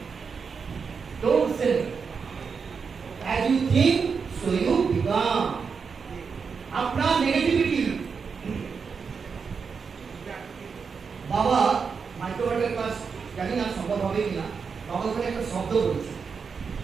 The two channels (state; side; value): quieter; left; 5.7 dB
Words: Don't say as you think so you become. আপনার নেগেটিভিটি। বাবা মাইক্রোবায়োটের ক্লাস জানি না সম্ভব হবে কিনা, বাবা ওখানে একটা শব্দ বলেছে,